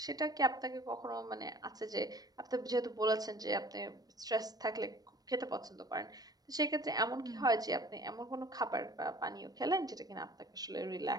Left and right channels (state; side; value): late; left; 0.19 ms